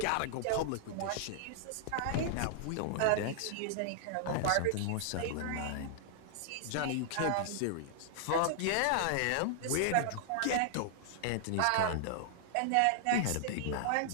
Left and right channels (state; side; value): different; both; correlation -0.01